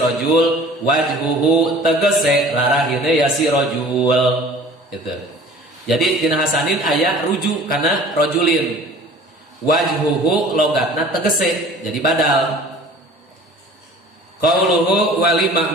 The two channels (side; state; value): both; normal; correlation 0.46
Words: wajhuhu tegese larahine ya si rojul gitu. Jadi dina hasanin aya rujuk kana rojulin wajhuhu logatna tegese jadi badal. Qauluhu wali